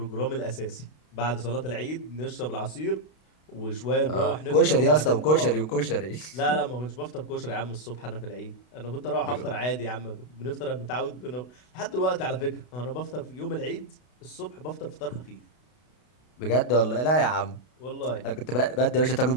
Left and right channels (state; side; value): late; right; 32 ms